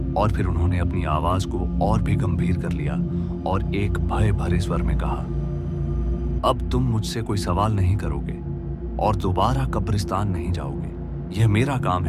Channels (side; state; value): both; identical; correlation 1.00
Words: और फिर उन्होंने अपनी आवाज को और भी गंभीर कर लिया और एक भय भरे स्वर में कहा, अब तुम मुझसे कोई सवाल नहीं करोगे और दोबारा कब्रिस्तान नहीं जाओगे। यह मेरा काम